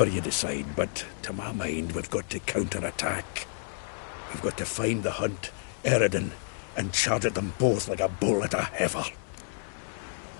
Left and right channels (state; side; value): silent; right; 58 dB below the other